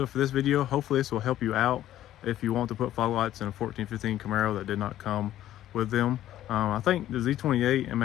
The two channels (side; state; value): right; quieter; 12.9 dB